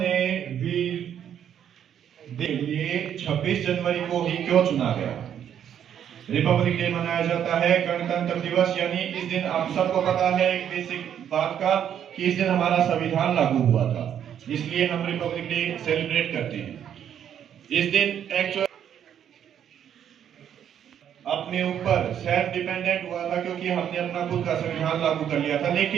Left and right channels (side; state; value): left; quieter; 9.4 dB